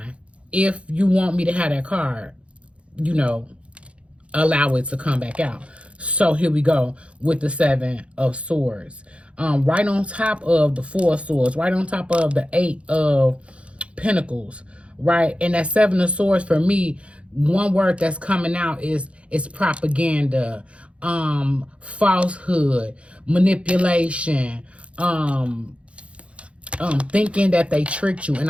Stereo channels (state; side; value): late; left; 0.061 ms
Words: if you want me to have that card, you know, allow it to come back out. So here we go with the Seven of Swords. Right on top of the Four of Swords, right on top of the Eight of Pentacles, right? And that Seven of Swords, for me, one word that's coming out is propaganda, falsehood, manipulation, thinking that they tricked you. And